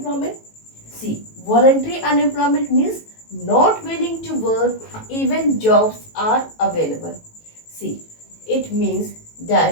See, voluntary unemployment means not willing to work even jobs are available. See, it means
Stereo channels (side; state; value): right; late; 18 ms